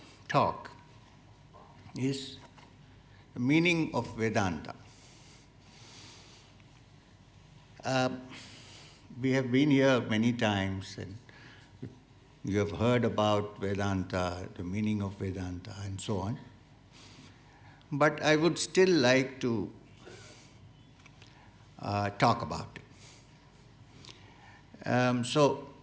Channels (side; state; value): both; identical; correlation 1.00